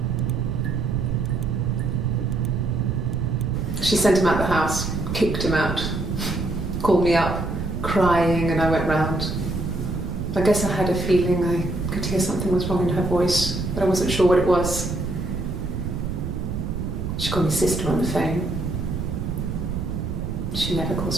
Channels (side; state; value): right; noise; rumble, 3 dB below the sound